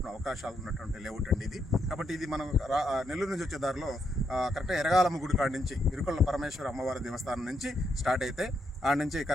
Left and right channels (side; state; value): both; normal; correlation 0.78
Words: అవకాశాలు ఉన్నటువంటి లేఅవుట్ అండి ఇది. కాబట్టి ఇది మనం నెల్లూరు నుంచి వచ్చే దారిలో కరెక్ట్గా ఎరగాలమ్మ గుడి కాడి నుంచి ఇరుకొల్ల పరమేశ్వర అమ్మవారి దేవస్థానం నుంచి స్టార్ట్ అయితే ఆడ నుంచి